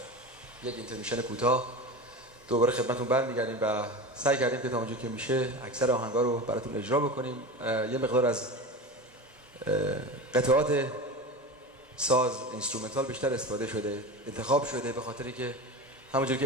یک اینترمیشن کوتاه دوباره خدمتتون برمیگردیم و سعی کردیم که تا اونجا که میشه اکثر آهنگا رو براتون اجرا بکنیم. یه مقدار از قطعات ساز اینسترومنتال بیشتر استفاده شده، انتخاب شده، به خاطری که همونجور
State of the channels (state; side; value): normal; both; correlation 0.28